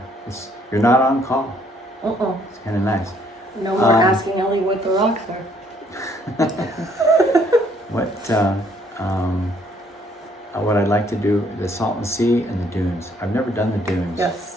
You're not on call. It's kind of nice. No more asking Ellie what the rocks are. What I'd like to do, the Salton Sea and the dunes. I've never done the dunes.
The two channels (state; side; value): normal; both; correlation 0.65